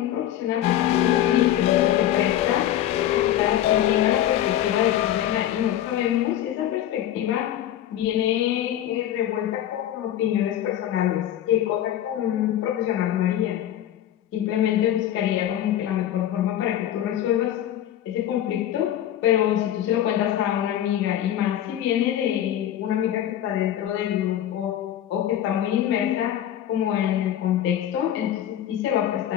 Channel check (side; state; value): right; quieter; 11.7 dB